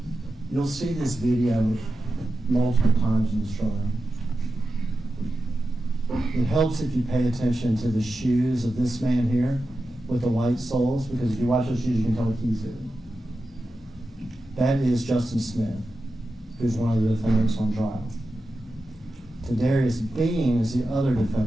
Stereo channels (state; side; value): normal; both; correlation 0.91